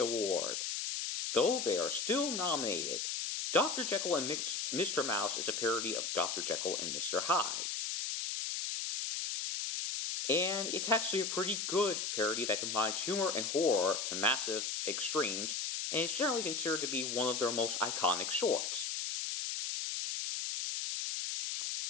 though they are still nominated. Dr. Jekyll and Mr. Mouse is a parody of Dr. Jekyll and Mr. Hyde. And it's actually a pretty good parody that combines humor and horror to massive extremes, and is generally considered to be one of their most iconic shorts.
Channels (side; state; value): left; noise; hiss, 2 dB below the sound